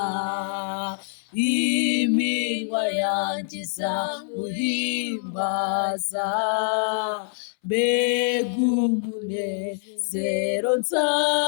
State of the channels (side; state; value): right; silent; 62 dB below the other